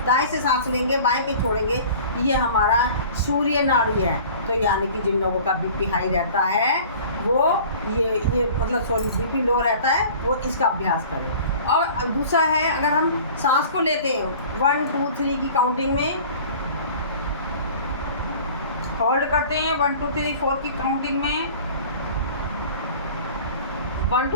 दाएं से सांस लेंगे, बाएं पे छोड़ेंगे, ये हमारा सूर्य नाड़ी है। तो यानी कि जिन लोगों का बीपी हाई रहता है वो ये मतलब बीपी लो रहता है, वो इसका अभ्यास करें। और दूसरा है, अगर हम सांस को लेते हैं 1 2 3 की काउंटिंग में, होल्ड करते हैं 1 2 3 4 की काउंटिंग में, 1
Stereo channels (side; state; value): both; inverted; correlation -0.45